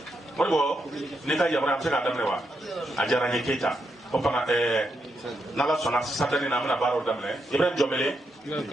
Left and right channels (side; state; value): both; normal; correlation 0.82